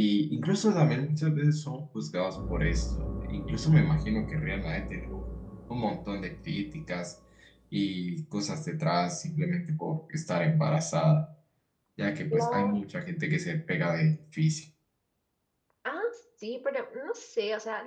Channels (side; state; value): both; identical; correlation 1.00